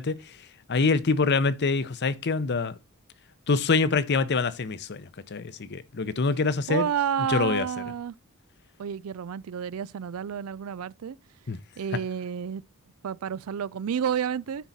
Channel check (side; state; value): both; normal; correlation 0.14